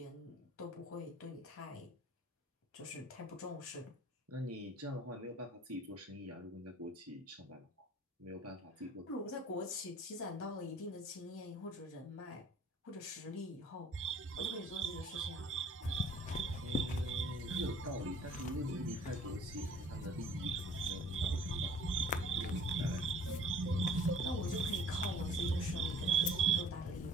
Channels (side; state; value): both; normal; correlation 0.52